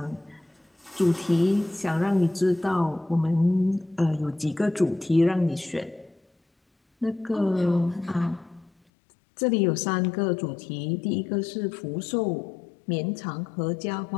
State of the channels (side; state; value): right; drops out; at 8.7 s